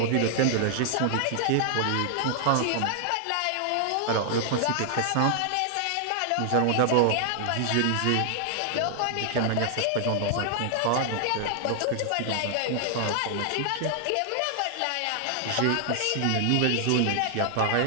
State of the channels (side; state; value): both; different; correlation 0.00